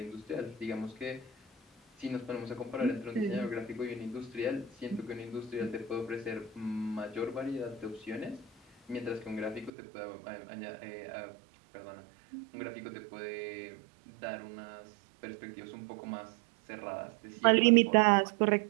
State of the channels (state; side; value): drops out; left; at 9.7 s